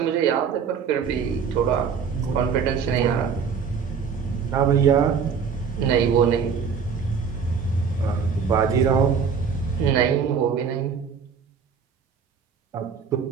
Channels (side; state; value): left; quieter; 6.4 dB